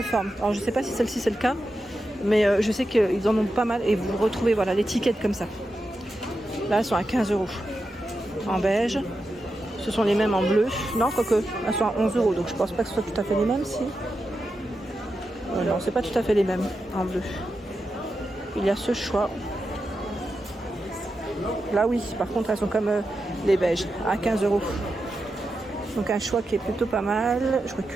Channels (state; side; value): normal; both; correlation 0.89